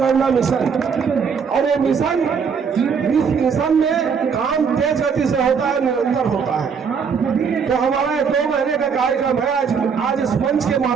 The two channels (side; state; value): left; quieter; 6.2 dB